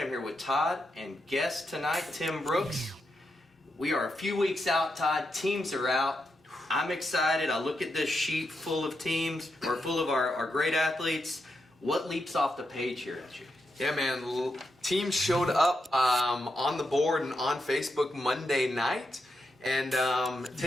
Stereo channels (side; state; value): both; normal; correlation 0.84